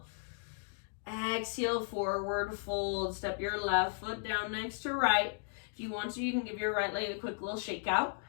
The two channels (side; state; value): right; silent; digital silence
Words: Exhale, forward fold. Step your left foot down next to right. If you want to, you can give your right leg a quick little shake out.